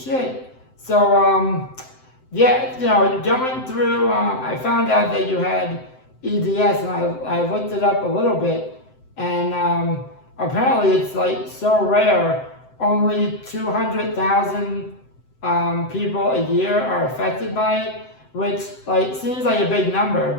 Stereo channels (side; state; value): right; late; 7.8 ms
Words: So yeah, you know, going through, I found out that you had EDS, and I looked it up a little bit, and apparently it's like so rare. Only 200,000 people a year are affected by it, which like seems like a big number,